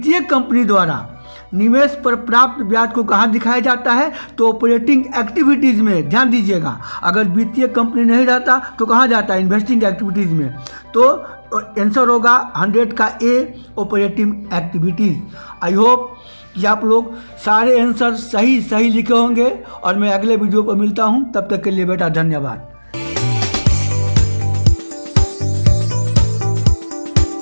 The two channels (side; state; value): both; inverted; correlation -1.00